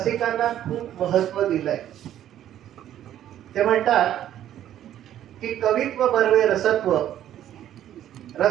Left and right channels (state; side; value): quieter; left; 11.5 dB